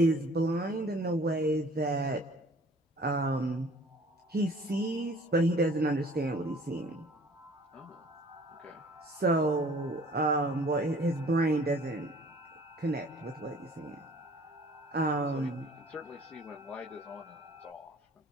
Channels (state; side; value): normal; both; correlation 0.52